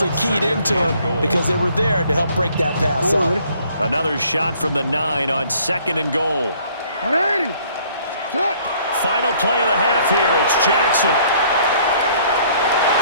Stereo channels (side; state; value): both; inverted; correlation -0.60